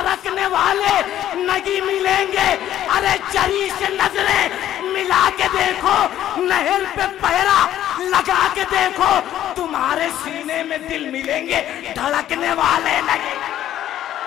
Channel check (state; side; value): quieter; right; 12.0 dB